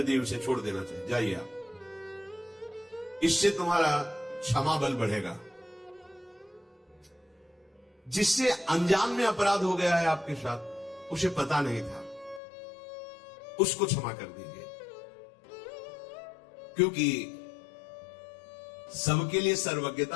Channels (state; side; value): drops out; right; at 12.4 s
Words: दिए उसे छोड़ देना चाहिए। जाइए आप, इससे तुम्हारा क्षमा बल बढ़ेगा। जिससे अनजान में अपराध हो गया है आपके साथ, उसे पता नहीं था, उसको क्षमा कर दीजिए। क्योंकि सबके लिए